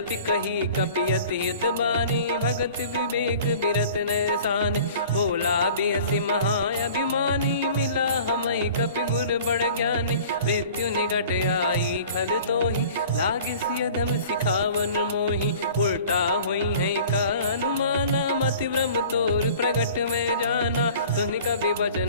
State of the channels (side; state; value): both; inverted; correlation -0.46